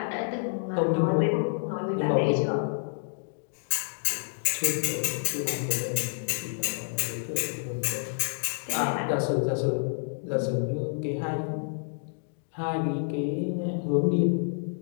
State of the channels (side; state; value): right; silent; digital silence